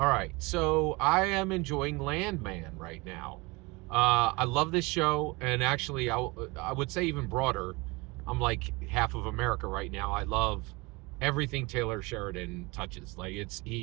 right, so I am enjoying Landman right now. I love this show, and actually, I would say even broader. I'm like half of America right now. I love everything Taylor Sheridan touches. Like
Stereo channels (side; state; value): left; quieter; 25.4 dB